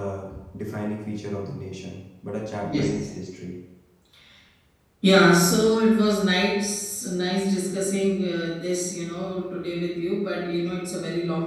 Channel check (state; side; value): identical; both; correlation 1.00